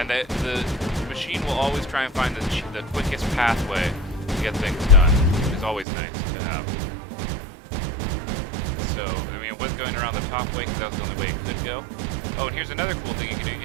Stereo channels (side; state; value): left; drops out; at 5.9 s